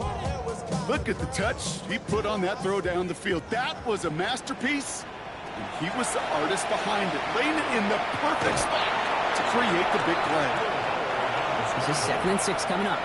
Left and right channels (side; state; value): both; identical; correlation 1.00